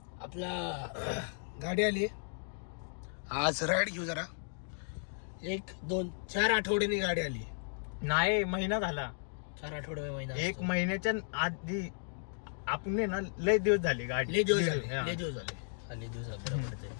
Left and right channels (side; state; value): right; silent; digital silence